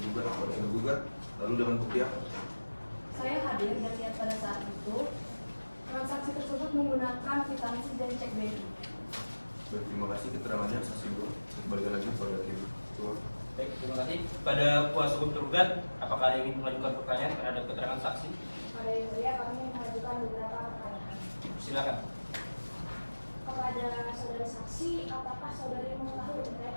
kepada tergugat? Lalu dengan bukti apa? Saya hadir dan lihat pada saat itu transaksi tersebut menggunakan kwitansi dan cek BNI. Baik, terima kasih keterangannya saksi 2. Kembali lagi kepada hakim. kepada kuasa hukum tergugat, apakah ada yang ingin mengajukan pertanyaan terhadap keterangan saksi? Pada yang mulia kami mengajukan beberapa pertanyaan. Silakan. Kepada saudari saksi, apakah saudari mengetahui terkait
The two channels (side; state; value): both; inverted; correlation -1.00